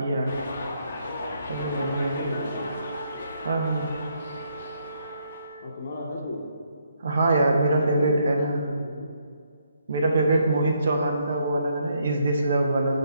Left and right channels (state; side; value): inverted; both; correlation -0.73